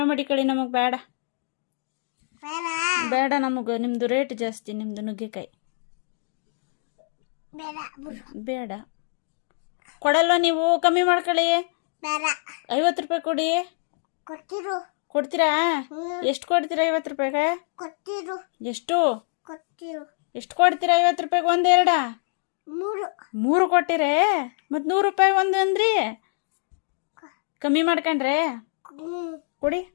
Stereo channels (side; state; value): right; silent; digital silence